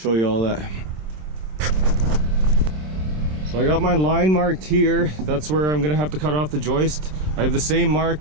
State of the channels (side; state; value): left; late; 27 ms